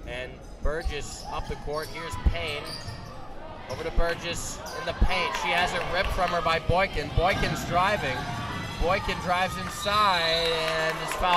And Burgess up the court. Here's Payne. Over to Burgess in the paint. She has it ripped from her by Boykin. Boykin's driving. Boykin drives inside and is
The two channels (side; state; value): both; identical; correlation 1.00